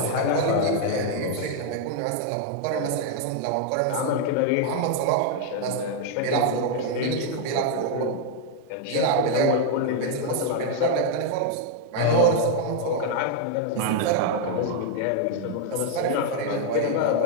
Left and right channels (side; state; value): both; different; correlation 0.00